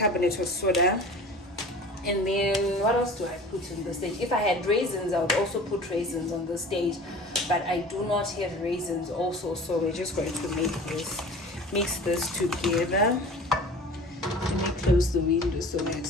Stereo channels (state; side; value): normal; both; correlation 0.40